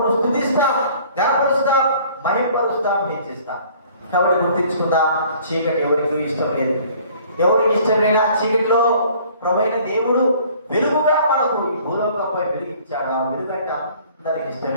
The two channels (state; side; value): inverted; both; correlation -0.54